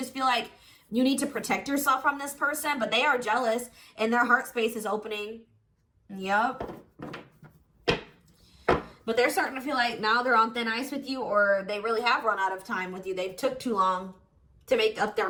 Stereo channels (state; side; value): identical; both; correlation 1.00